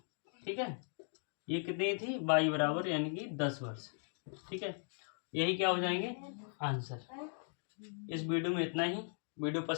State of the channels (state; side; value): silent; right; 52 dB below the other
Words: ठीक है, ये कितनी थी, y बराबर यानी कि 10 वर्ष। ठीक है, यही क्या हो जाएंगे आंसर। इस वीडियो में इतना ही। वीडियो